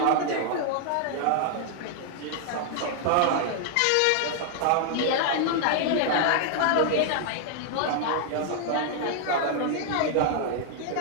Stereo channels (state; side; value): different; both; correlation 0.00